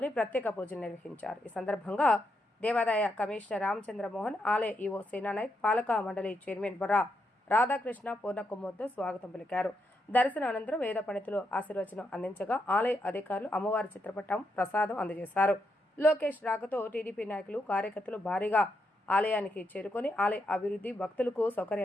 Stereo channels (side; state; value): both; normal; correlation 0.81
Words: ప్రత్యేక పూజలు నిర్వహించారు. ఈ సందర్భంగా దేవాదాయ కమిషనర్ రామచంద్రమోహన్, ఆలయ ఈవో సేనానాయక్, పాలక మండలి చైర్మన్ బొర్రా రాధాకృష్ణ పూర్ణకుమ్మతో స్వాగతం పలికారు. దర్శన అనంతరం వేద పండితులు ఆశీర్వచనం అందించగా ఆలయ అధికారులు అమ్మవారి చిత్రపటం, ప్రసాదం అందజేశారు. లోకేష్ రాకతో టీడీపీ నాయకులు, కార్యకర్తలు భారీగా ఆలయానికి చేరుకొని ఆలయ అభివృద్ధి, భక్తులకు